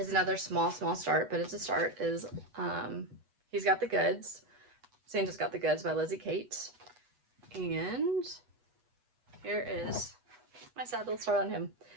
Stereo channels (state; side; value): late; left; 8.2 ms